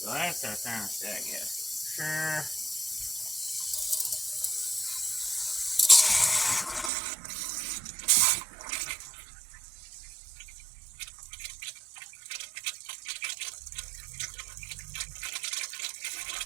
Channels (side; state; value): left; drops out; at 6.9 s